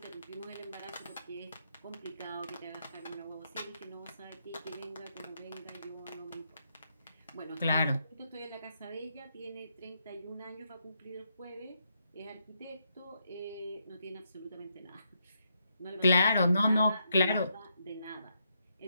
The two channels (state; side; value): inverted; both; correlation -0.79